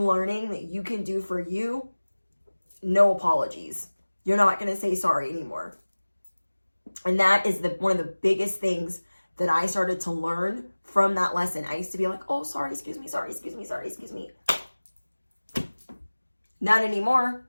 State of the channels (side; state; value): both; inverted; correlation -1.00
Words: that you can do for you. No apologies. You're not going to say sorry anymore. And that is one of the biggest things that I started to learn from that lesson. I used to be like, oh, sorry, excuse me. Not